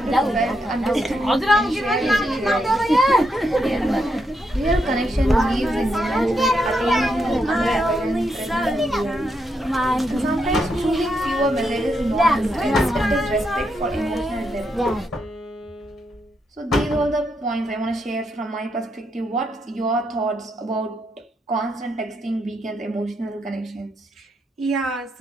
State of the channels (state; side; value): normal; both; correlation 0.80